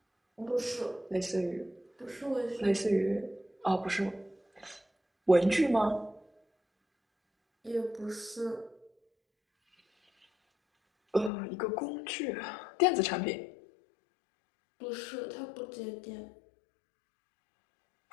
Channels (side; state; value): right; drops out; at 11.3 s